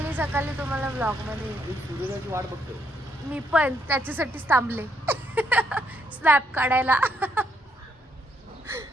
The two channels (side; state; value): both; normal; correlation 0.75